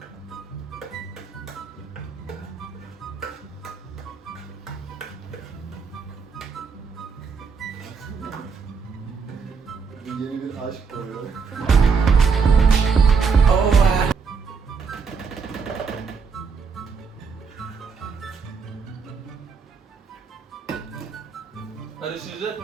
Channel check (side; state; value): left; quieter; 5.5 dB